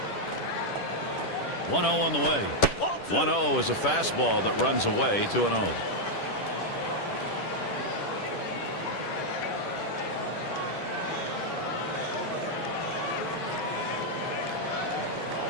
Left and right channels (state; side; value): late; right; 10 ms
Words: One 0 on the way. 1-0 is a fastball that runs away. 2-0.